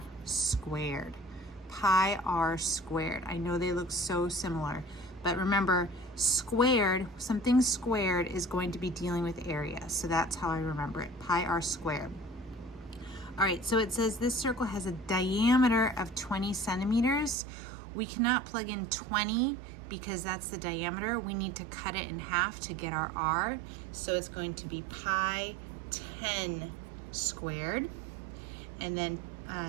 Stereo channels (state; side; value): drops out; left; at 17.4 s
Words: squared. Pi r squared. I know they look so similar, but remember, squared, something squared is going to be dealing with area. So that's how I remember it, pi r squared. All right, so it says this circle has a diameter of 20 centimeters. We cannot plug in 20 because that's the diameter. We need to cut it in half to get our r. So it's going to be pi 10 squared. And then